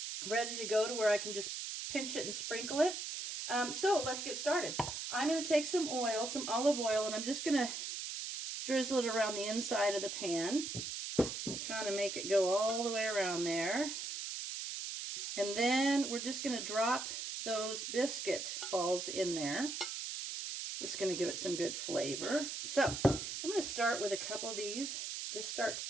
ready to go to where I can just pinch it and sprinkle it. So let's get started. I'm going to take some oil, some olive oil, and I'm just going to drizzle it around the inside of the pan. kind of make it go all the way around there. And then we're just going to drop those biscuit balls in there. This is going to give it some good flavor. So I'm going to start with a couple of these. Just start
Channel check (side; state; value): right; noise; hiss, 5 dB below the sound